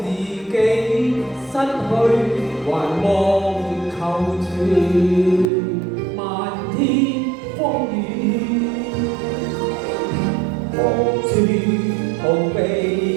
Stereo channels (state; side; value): drops out; left; at 5.5 s